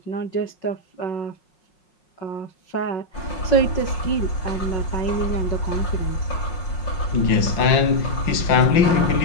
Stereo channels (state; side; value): late; right; 5.8 ms